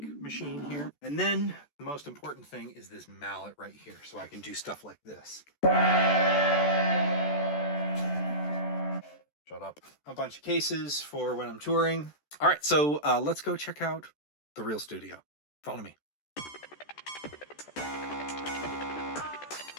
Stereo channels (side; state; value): right; late; 14 ms